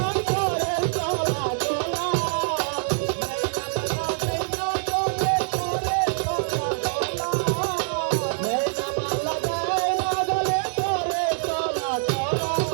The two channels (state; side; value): silent; left; digital silence